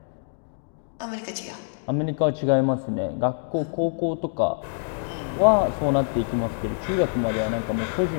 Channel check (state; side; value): silent; right; digital silence